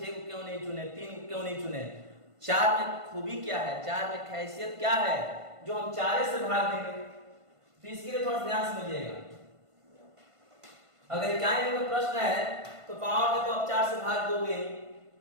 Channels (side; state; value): left; late; 1.5 ms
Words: को क्यों नहीं चुने, 3 को क्यों नहीं चुने। 4 में खूबी क्या है, 4 में खासियत क्या है जो हम 4 से भाग देंगे। तो इसके लिए थोड़ा ध्यान समझिएगा। अगर इकाई अंक का प्रश्न है तो पावर में तो आप 4 से भाग दोगे,